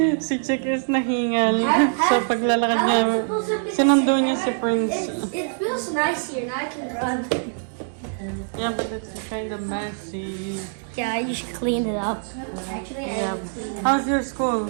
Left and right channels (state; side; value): silent; left; digital silence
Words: Si Chick is nahingal. So paglalakad niya, sinundo niya si Prince. It feels nice here. Now I can run. Yeah, but it's kind of messy. Yeah, you should clean it up. Actually, Yeah. How's your school?